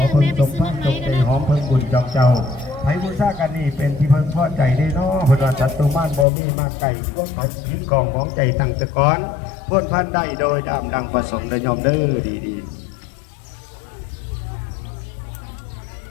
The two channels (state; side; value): drops out; right; at 6.2 s